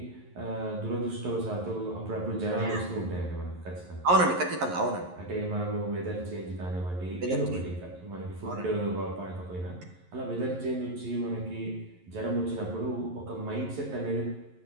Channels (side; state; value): left; late; 11 ms